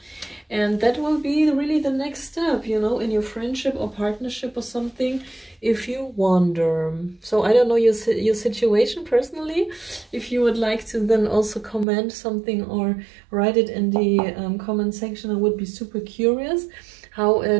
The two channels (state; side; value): drops out; left; at 11.9 s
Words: and that will be really the next step, you know, in your friendship or partnership or something, if you wonder. So I don't know your situation personally. If you would like to then also comment something or write it in the comment section, I would be super curious how